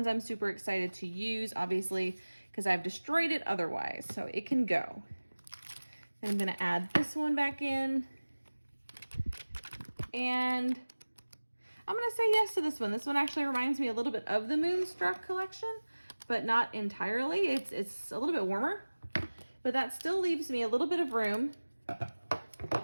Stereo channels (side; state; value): both; inverted; correlation -1.00